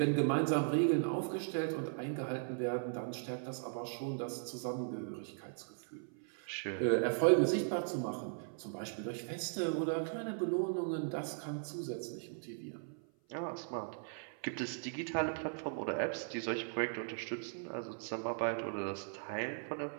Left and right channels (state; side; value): silent; left; 52 dB below the other